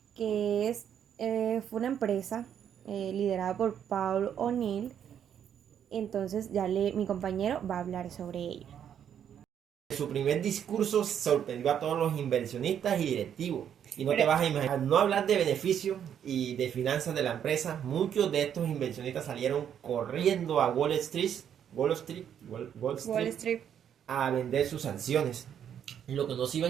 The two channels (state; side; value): quieter; left; 9.1 dB